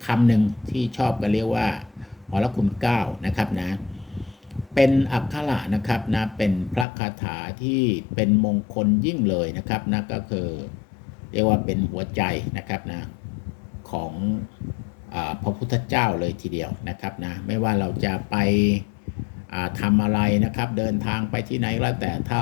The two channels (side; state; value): right; drops out; at 6.9 s